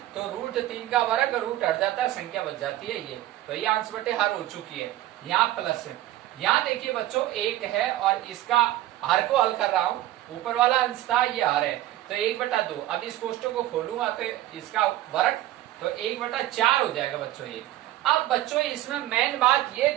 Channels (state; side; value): quieter; left; 14.9 dB